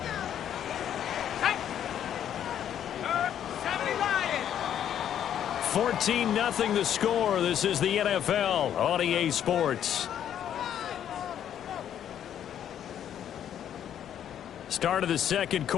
Hey. 70 Lions. 14-0 the score. This is the NFL on EA Sports. Start of the second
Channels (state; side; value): quieter; right; 9.9 dB